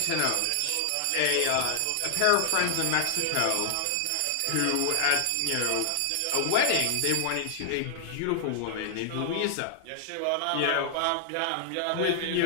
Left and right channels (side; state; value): both; different; correlation 0.00